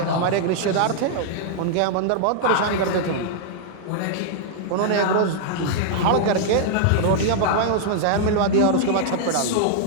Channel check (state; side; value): different; both; correlation -0.01